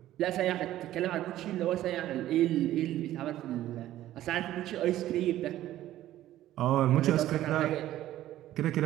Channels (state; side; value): quieter; left; 13.8 dB